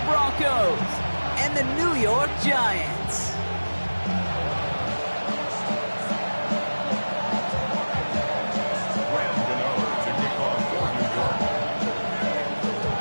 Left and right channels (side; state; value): both; inverted; correlation -1.00